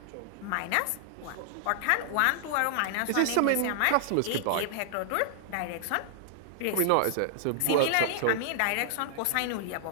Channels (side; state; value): both; different; correlation -0.01